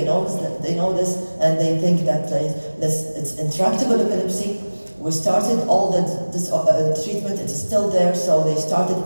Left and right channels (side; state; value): both; inverted; correlation -1.00